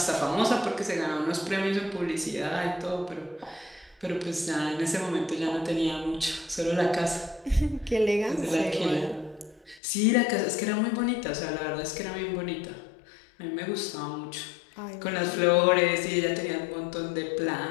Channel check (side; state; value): right; drops out; at 9.8 s